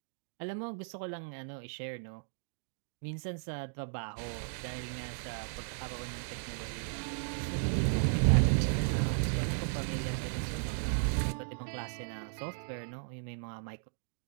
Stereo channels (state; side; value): silent; left; digital silence